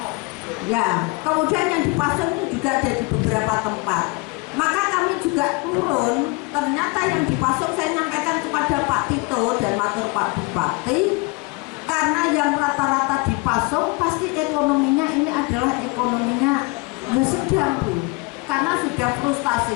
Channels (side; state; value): right; quieter; 28.1 dB